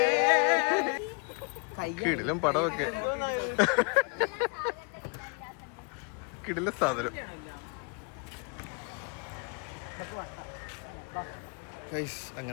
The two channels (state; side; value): quieter; right; 36.3 dB